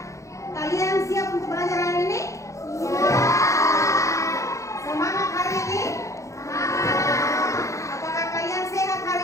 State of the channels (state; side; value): late; right; 0.15 ms